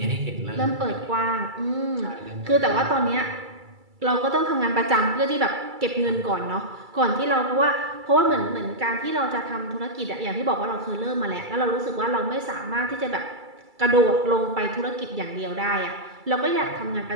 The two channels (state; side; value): late; left; 2.3 ms